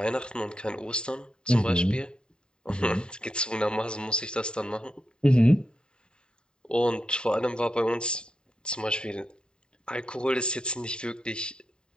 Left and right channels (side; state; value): right; late; 0.048 ms